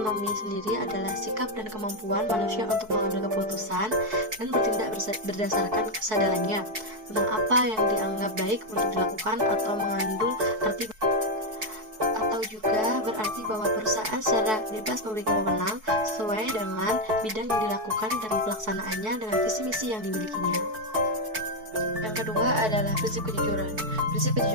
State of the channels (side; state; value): left; late; 4.6 ms